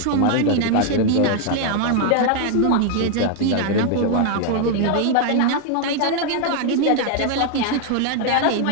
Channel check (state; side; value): different; both; correlation 0.00